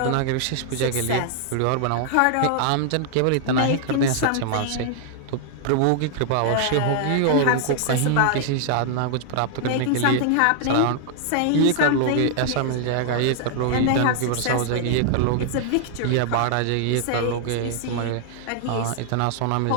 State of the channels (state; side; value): different; both; correlation 0.00